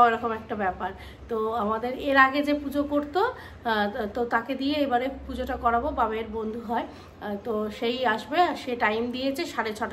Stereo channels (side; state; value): both; identical; correlation 1.00